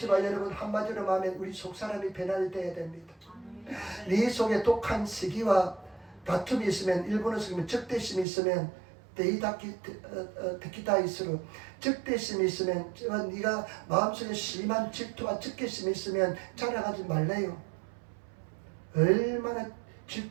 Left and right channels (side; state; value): left; drops out; at 8.2 s